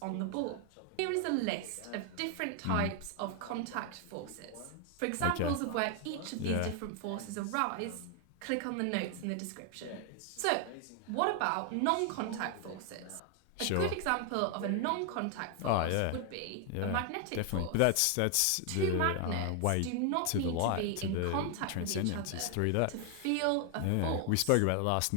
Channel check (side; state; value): both; different; correlation 0.00